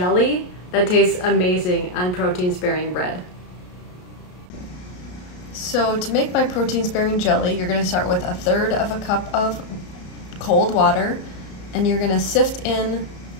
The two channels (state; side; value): late; right; 33 ms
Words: that tastes amazing on protein-sparing bread. So to make my protein-sparing jelly, you're going to start with 1/3 of a cup of cold water, and you're going to sift in